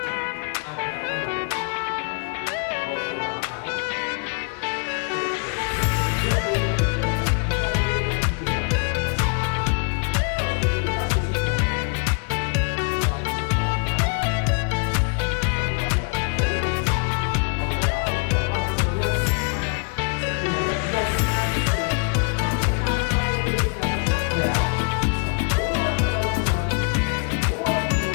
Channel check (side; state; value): right; quieter; 38.1 dB